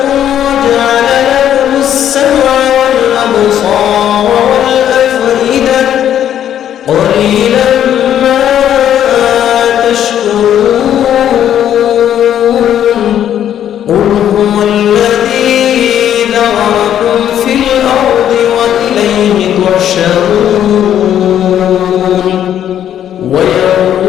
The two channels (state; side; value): quieter; right; 10.4 dB